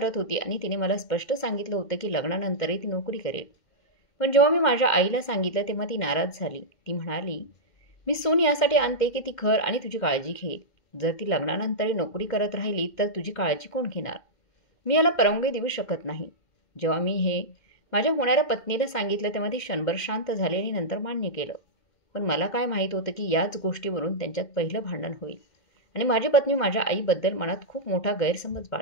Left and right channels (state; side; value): late; right; 2.0 ms